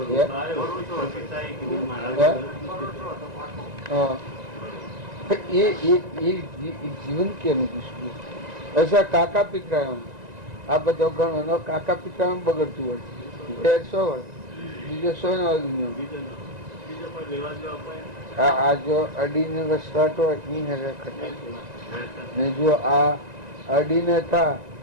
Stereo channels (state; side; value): late; left; 1.9 ms